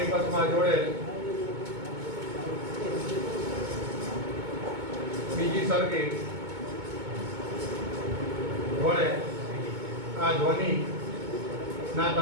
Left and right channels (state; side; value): late; left; 2.2 ms